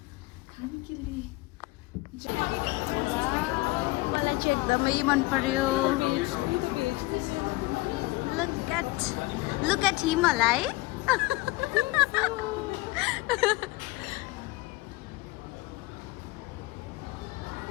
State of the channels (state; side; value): quieter; right; 21.2 dB